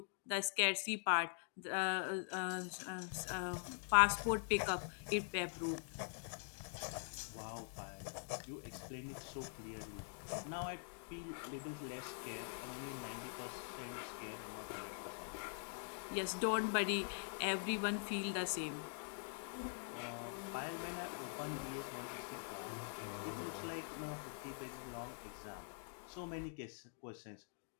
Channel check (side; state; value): right; silent; digital silence